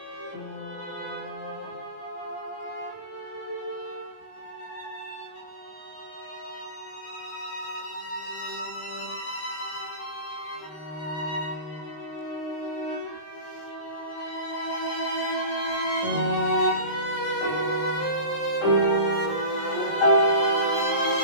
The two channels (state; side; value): late; right; 20 ms